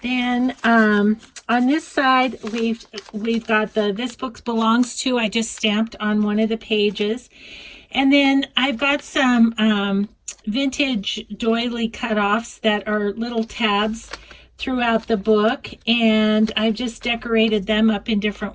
then on this side we've got the This Book Belongs To. I just stamped on one of the pages. And then I've got some vintage doily cutoffs that are little tabs throughout the book, and I've just decorated them up in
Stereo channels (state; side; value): identical; both; correlation 1.00